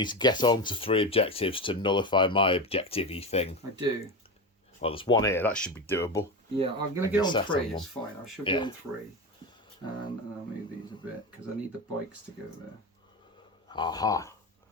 to get on to 3 objectives to nullify my objective-y thing. I do. Well, there's 1 here. That should be doable. Yeah, I'm going to get on set 3. on It's fine. I should be on 3. And I'll move these a bit because I need the bikes to go there. Aha.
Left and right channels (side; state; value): both; normal; correlation 0.21